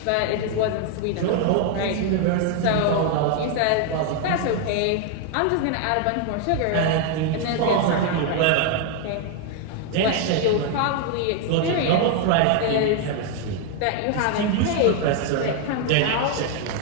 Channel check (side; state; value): both; different; correlation 0.00